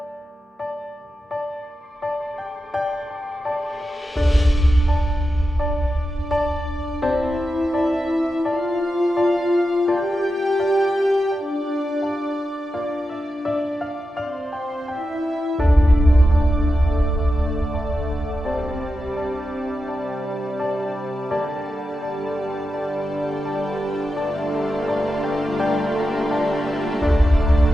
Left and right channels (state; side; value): normal; both; correlation 0.90